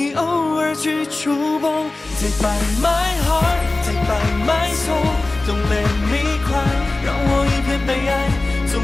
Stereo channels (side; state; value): right; quieter; 3.1 dB